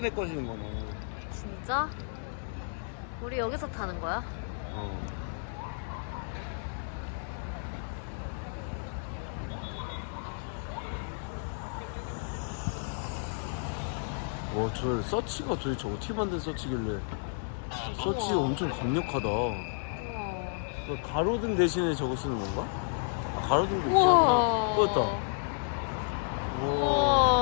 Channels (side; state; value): right; silent; digital silence